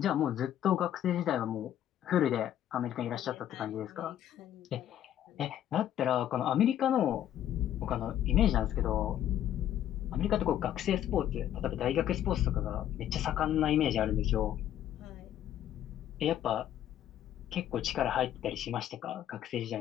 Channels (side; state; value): right; quieter; 11.2 dB